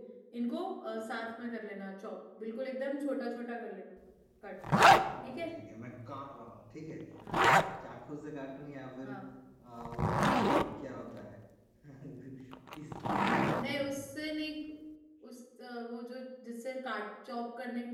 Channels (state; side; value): identical; both; correlation 1.00